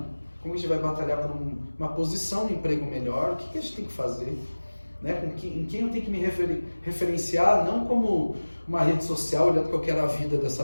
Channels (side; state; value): both; inverted; correlation -1.00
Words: Como a gente vai batalhar por uma posição no emprego melhor, o que a gente tem que fazer? Né? Em quem eu tenho que me referenciar, não como uma rede social olhando que eu quero a vida dessa